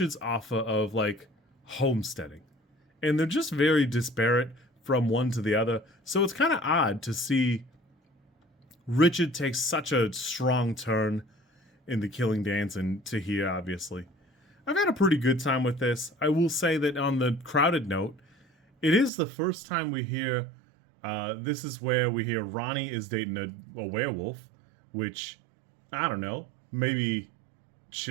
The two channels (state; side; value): drops out; left; at 19.1 s